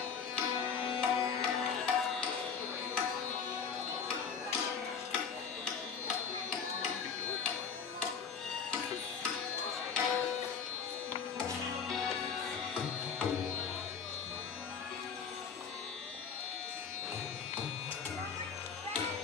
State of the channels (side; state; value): right; quieter; 6.4 dB